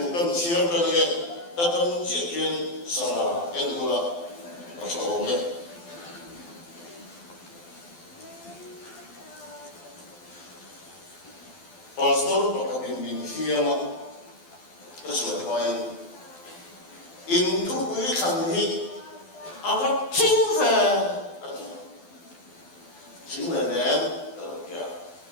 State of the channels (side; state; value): right; late; 12 ms